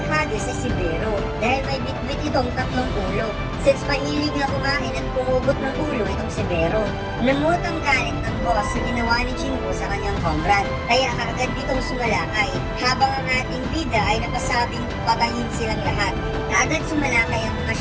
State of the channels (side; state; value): both; identical; correlation 1.00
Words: ay si Bero dahil may bitbit itong tatlong ulo since mahilig na kumain at pumugot ng ulo itong si Bero. Namut ang galit ng boss sa ginawa ni Jinwoo sa kanyang comrade kaya kaagad ditong sumalakay habang ang ating bida ay napasabing patayin silang lahat. Kaagad sumalakay ang mga